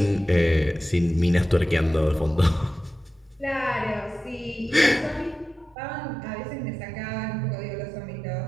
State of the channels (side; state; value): left; drops out; at 5.8 s